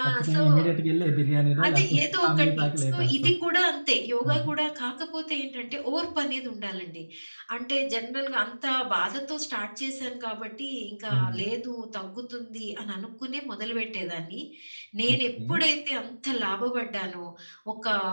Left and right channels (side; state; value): both; inverted; correlation -1.00